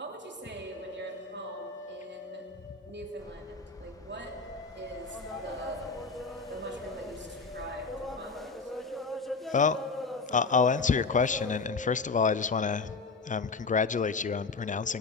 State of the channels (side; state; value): right; quieter; 4.3 dB